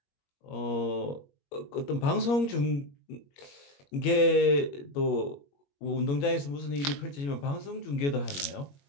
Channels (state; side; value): late; right; 21 ms